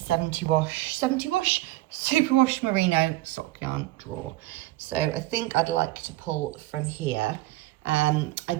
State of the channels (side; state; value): left; quieter; 17.4 dB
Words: wash superwash merino sock yarn drawer. So I think I'd like to pull from here. I